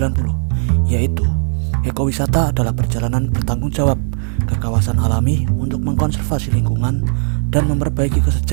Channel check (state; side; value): silent; left; 55 dB below the other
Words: yaitu ekowisata adalah perjalanan bertanggung jawab ke kawasan alami untuk mengkonservasi lingkungan dan memperbaiki